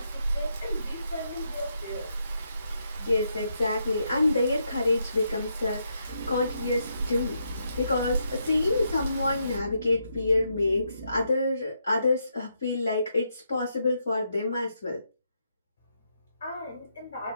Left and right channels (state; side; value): inverted; both; correlation -0.80